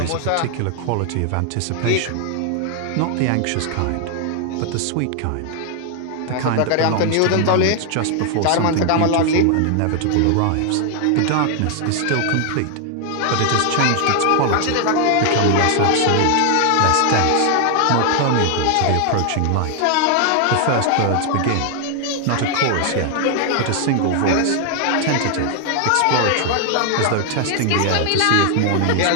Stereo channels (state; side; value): different; both; correlation 0.00